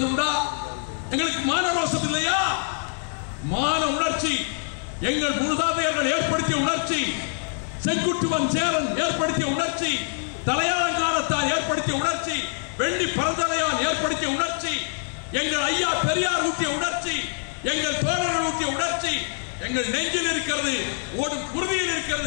உண்டா? எங்களுக்கு மான ரோசம் இல்லையா? மான உணர்ச்சி எங்கள் மூதாதையர்கள் ஏற்படுத்திய உணர்ச்சி, செங்குட்டுவன் சேரன் ஏற்படுத்திய உணர்ச்சி, தலையாளங்காலத்தால் ஏற்படுத்திய உணர்ச்சி, வெள்ளி பரந்தலையால் ஏற்படுத்திய உணர்ச்சி, எங்கள் ஐயா பெரியார் ஊட்டிய உணர்ச்சி, எங்கள் தோழர்கள் ஊட்டிய உணர்ச்சி எங்கள் நெஞ்சில் இருக்கிறது, ஓடும் குருதியில்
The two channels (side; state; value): right; silent; digital silence